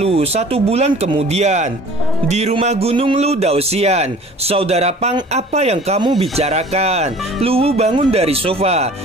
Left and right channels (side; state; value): both; normal; correlation 0.47